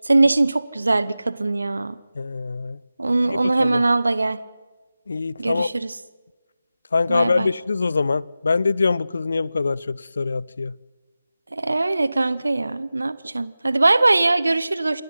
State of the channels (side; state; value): both; inverted; correlation -0.94